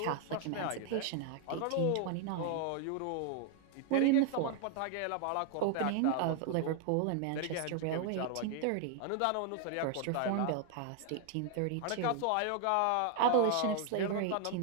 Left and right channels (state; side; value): different; both; correlation 0.00